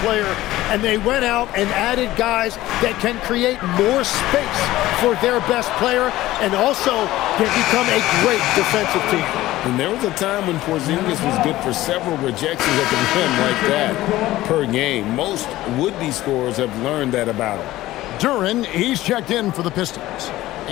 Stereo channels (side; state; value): right; quieter; 16.2 dB